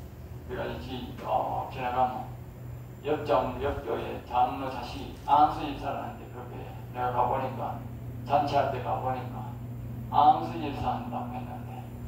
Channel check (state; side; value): identical; both; correlation 1.00